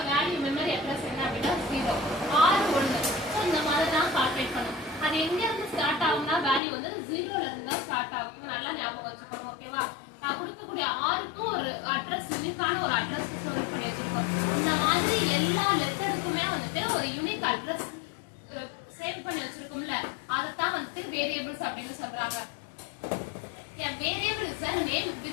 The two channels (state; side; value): drops out; right; at 6.6 s